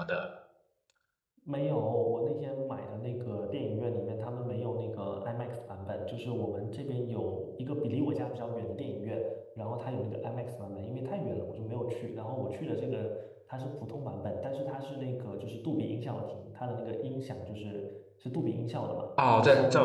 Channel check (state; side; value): identical; both; correlation 1.00